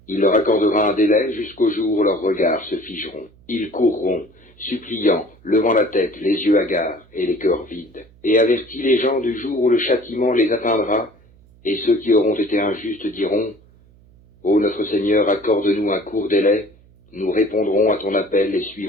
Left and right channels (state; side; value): noise; right; hum, 28 dB below the sound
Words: Il leur accordera un délai jusqu'au jour où leurs regards se figeront. Ils courront, suppliant, levant la tête, les yeux hagards et les cœurs vides. Et avertis les gens du jour où le châtiment les atteindra, et ceux qui auront été injustes diront « Ô notre Seigneur, accorde-nous un court délai, nous répondrons à ton appel et